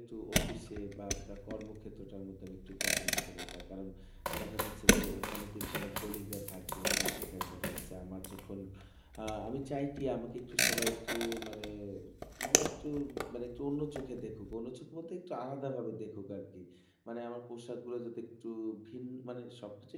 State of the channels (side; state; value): both; identical; correlation 1.00